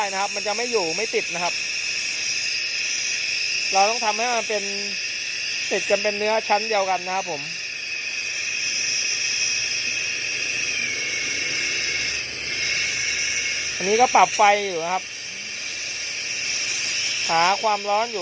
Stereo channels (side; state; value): both; identical; correlation 1.00